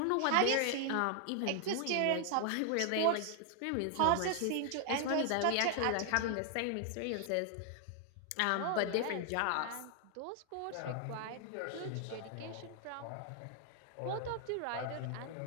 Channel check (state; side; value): different; both; correlation 0.00